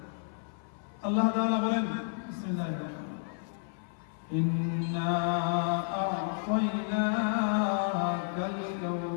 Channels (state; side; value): silent; right; 56 dB below the other